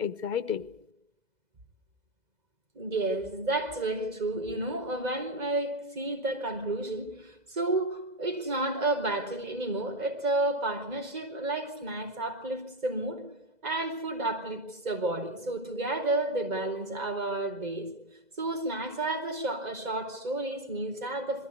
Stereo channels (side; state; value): left; late; 2.0 ms